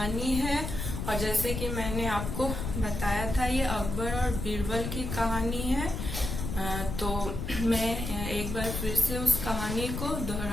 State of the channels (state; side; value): noise; left; rumble, 4 dB below the sound